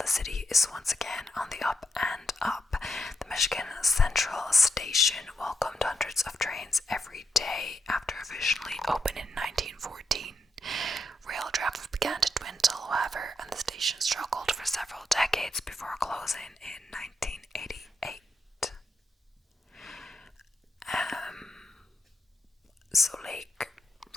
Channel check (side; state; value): both; normal; correlation 0.83